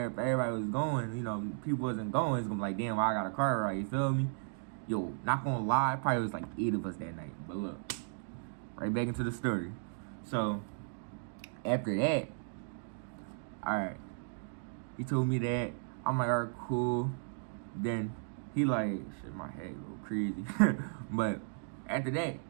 everybody was going. People wasn't going. It's gonna be like, damn, why I got a car ride? You feel me? Yo, not gonna lie, probably was like 8 of us that night. But look, right back into the story. So after that, all right, he told me that. I'm like, all right, cool. Then he like, shit, my head go crazy. But after that,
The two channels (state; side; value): silent; left; digital silence